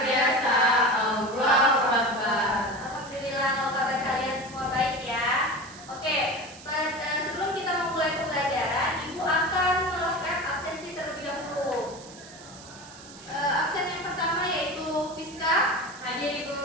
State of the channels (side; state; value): right; noise; hiss, 18 dB below the sound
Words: biasa. Allahu Akbar. Alhamdulillah kalau kabar kalian semua baik ya. Oke, sebelum kita memulai pembelajaran, Ibu akan melakukan absensi terlebih dahulu. Absen yang pertama yaitu Fiska. Hadir, Ibu.